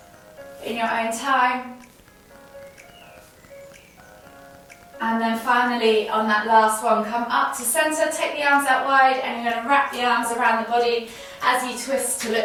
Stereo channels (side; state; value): both; identical; correlation 1.00